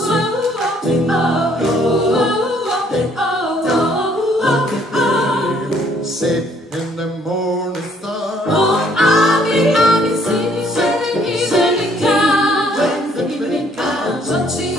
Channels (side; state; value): both; normal; correlation 0.64